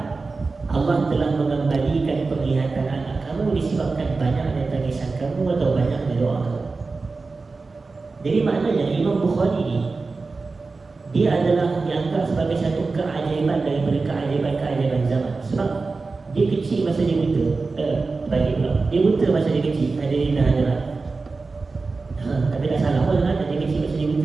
Allah telah mengembalikan penglihatan anak kamu disebabkan banyaknya tangisan kamu atau banyaknya doa kamu. Jadi maknanya Imam Bukhari ni dia adalah dianggap sebagai satu keajaiban daripada keajaiban zaman. Sebab dia kecil masa dia buta. Dia buta masa dia kecil. Hadirin dan hadirat. Tapi tak salah pun kan, dia kecil masa dia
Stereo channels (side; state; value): left; quieter; 4.0 dB